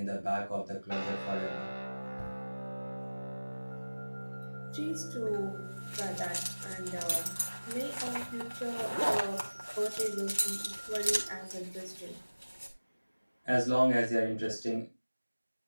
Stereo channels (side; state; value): both; inverted; correlation -1.00